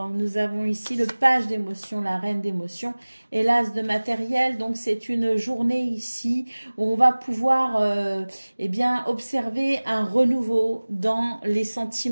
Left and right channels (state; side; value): inverted; both; correlation -1.00